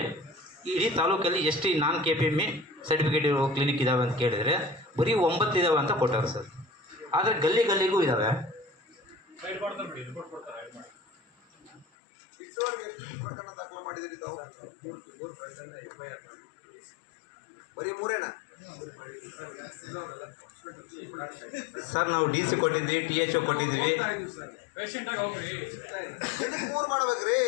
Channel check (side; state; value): right; drops out; at 11.9 s